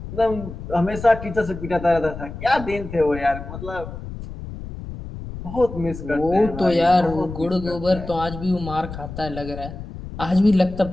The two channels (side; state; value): left; noise; rumble, 11 dB below the sound